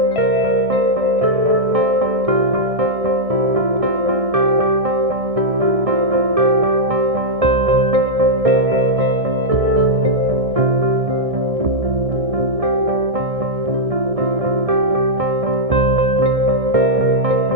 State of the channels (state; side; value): late; left; 1.6 ms